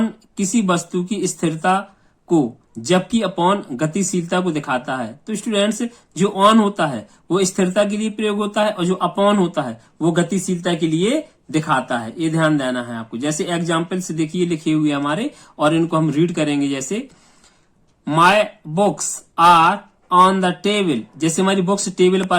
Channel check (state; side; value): identical; both; correlation 1.00